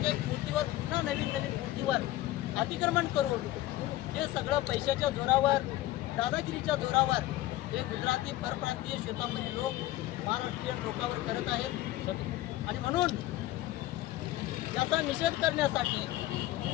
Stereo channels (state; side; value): quieter; right; 16.0 dB